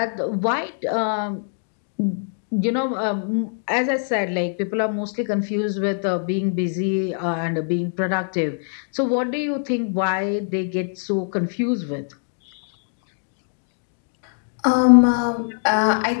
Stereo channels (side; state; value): right; silent; digital silence